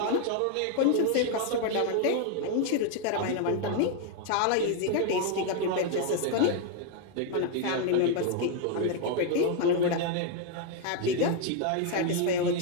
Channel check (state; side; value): different; both; correlation 0.00